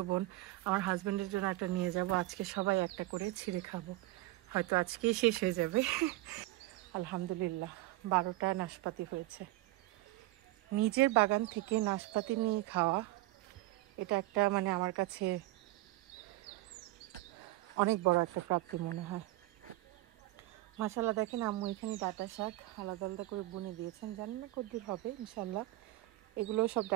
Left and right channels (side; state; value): left; quieter; 18.3 dB